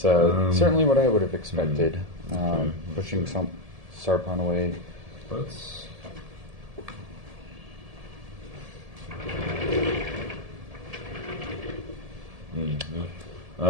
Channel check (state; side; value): late; left; 1.7 ms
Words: certainly what I would have expected. Okay. Pushing some Sarpon away. Let's. Yeah.